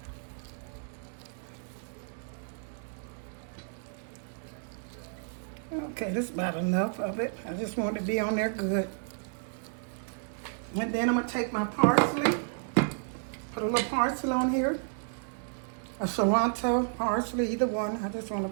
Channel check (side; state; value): left; silent; digital silence